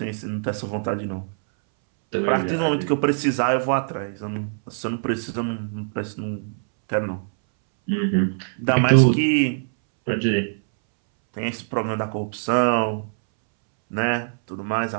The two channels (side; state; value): left; silent; 63 dB below the other